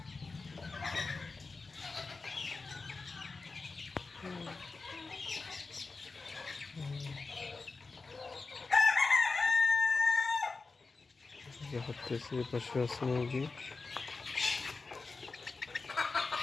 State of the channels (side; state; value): right; quieter; 4.0 dB